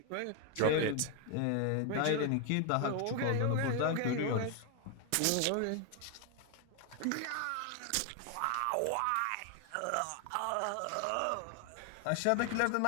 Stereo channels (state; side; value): different; both; correlation 0.01